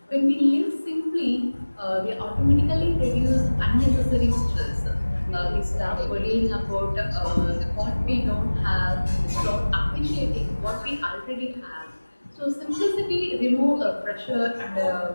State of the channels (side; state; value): both; inverted; correlation -1.00